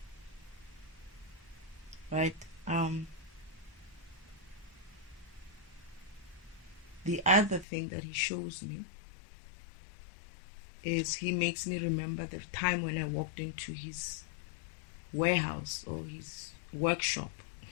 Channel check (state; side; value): drops out; right; at 7.7 s